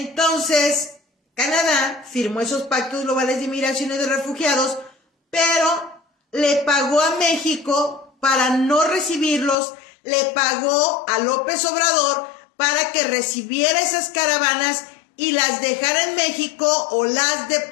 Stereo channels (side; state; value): right; drops out; at 9.6 s